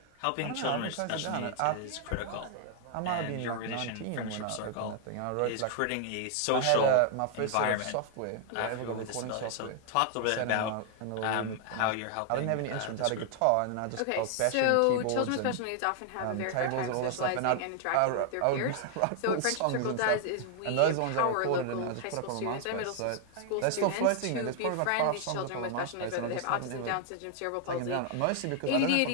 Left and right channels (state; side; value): different; both; correlation 0.00